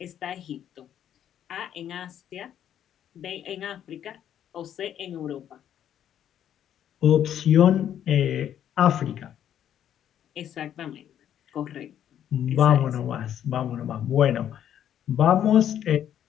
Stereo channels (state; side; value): quieter; right; 10.2 dB